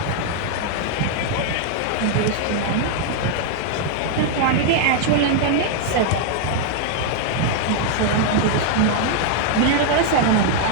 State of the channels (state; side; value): different; both; correlation 0.00